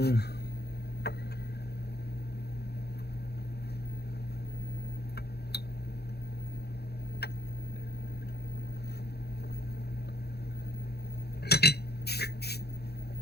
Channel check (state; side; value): late; right; 0.47 ms